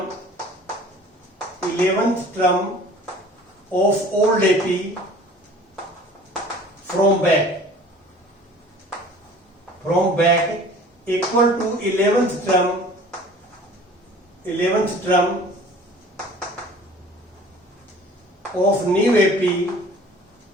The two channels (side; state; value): both; normal; correlation 0.47